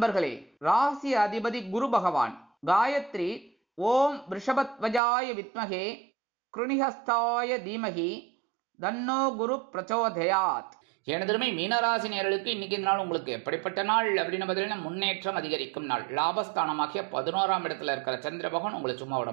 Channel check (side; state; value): left; drops out; at 5.0 s